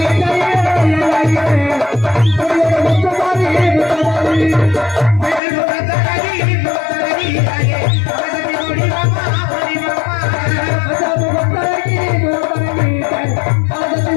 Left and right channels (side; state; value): right; drops out; at 5.4 s